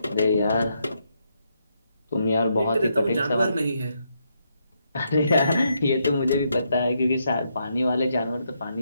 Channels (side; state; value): both; inverted; correlation -0.78